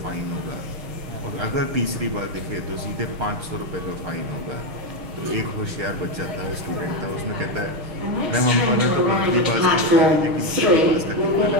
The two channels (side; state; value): left; late; 6.4 ms